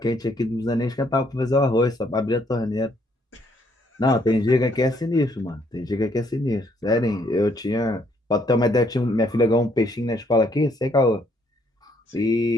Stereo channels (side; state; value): both; normal; correlation 0.69